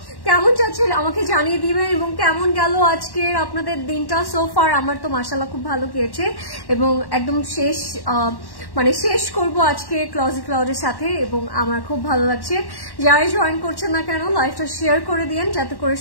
কেমন যাচ্ছে আমাকে জানিয়ে দিবেন এবং কেমন গেল আজকের আপনাদের দিনটা সো ফার. আমার তো মাশাআল্লাহ খুব ভালো গিয়েছে এবং একদম শেষ করব আজকে Closet Cloud এর সাথে এবং আমার খুব ভালো লাগছে. যারা জয়েন করছেন না কেন লাইভটা শেয়ার করে দিন যাতে করে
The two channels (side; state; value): right; late; 1.1 ms